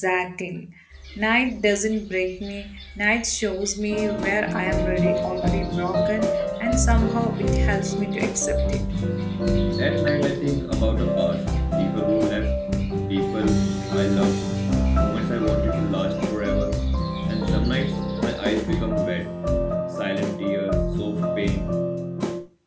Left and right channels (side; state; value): both; identical; correlation 1.00